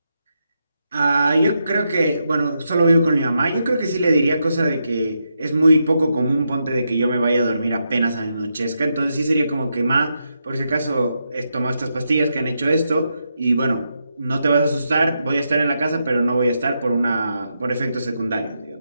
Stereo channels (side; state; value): both; inverted; correlation -0.84